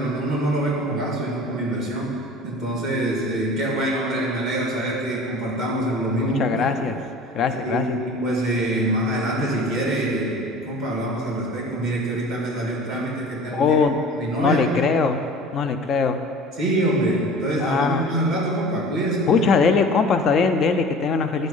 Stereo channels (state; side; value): normal; both; correlation 0.42